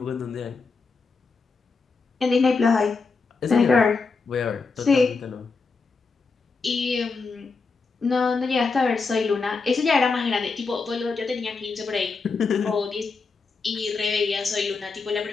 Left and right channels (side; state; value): right; quieter; 4.4 dB